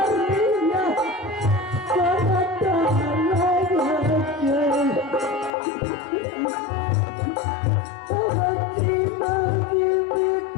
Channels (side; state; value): right; drops out; at 5.5 s